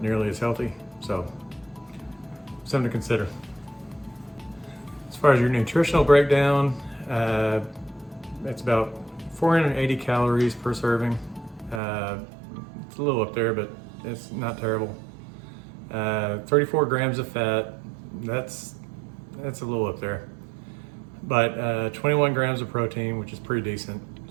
nearly as healthy. So something to consider. As far as your nutritional breakdown, it's about 480 calories per serving. It's a little up there, but it's not terrible. 34 grams of fat, that's a little up there. But 21 grams of protein, which is pretty decent.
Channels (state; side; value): drops out; left; at 11.8 s